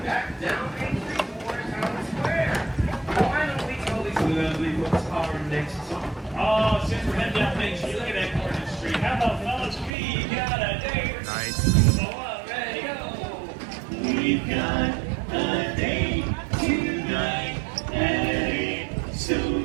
back down Main Street towards Town Square. Why don't we tell these lovely folks our next song? Oh, since we're heading down Main Street, look at that corner street. How about fellas? We got a date. Nice. So ready, go. We've got a date tonight at 8, so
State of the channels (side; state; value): left; drops out; at 9.9 s